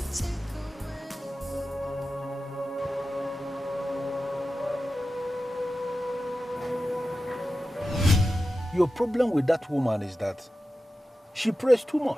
take Your problem with that woman is that she prays too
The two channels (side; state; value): both; normal; correlation 0.93